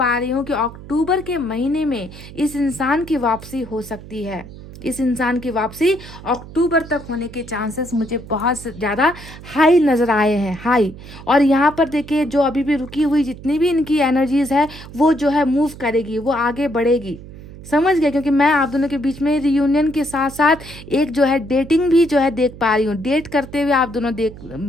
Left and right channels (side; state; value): right; noise; hum, 16 dB below the sound